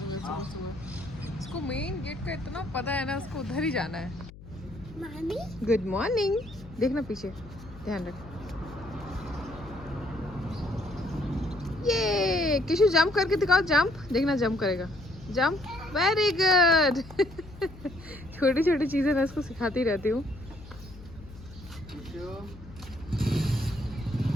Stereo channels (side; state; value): left; noise; hum, 18 dB below the sound